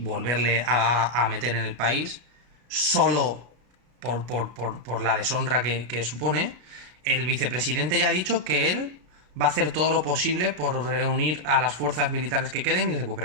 a meter en el país, solo por la deshonra que supone. El vicepresidente ya ha dicho que él va a hacer todo lo posible por reunir a las fuerzas militares que queden y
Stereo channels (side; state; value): left; late; 33 ms